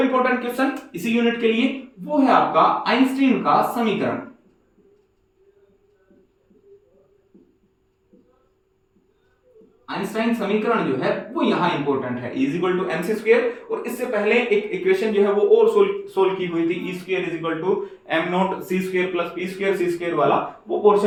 क्वेश्चन इसी यूनिट के लिए वो है आपका आइंस्टीन का समीकरण। आइंस्टाइन समीकरण जो है वो यहां इंपॉर्टेंट है, E equal to m c square, और इससे पहले एक इक्वेशन जो है वो और सोल्व की हुई थी, E square is equal to m not c square plus p square c square वाला, वो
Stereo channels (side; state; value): both; identical; correlation 1.00